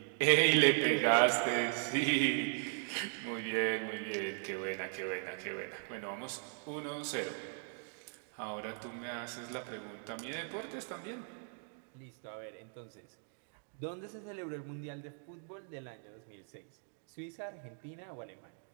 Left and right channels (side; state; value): left; silent; 52 dB below the other